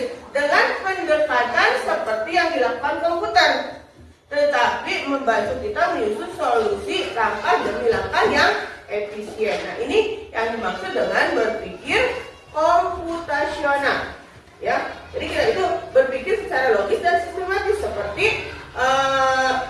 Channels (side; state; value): both; identical; correlation 1.00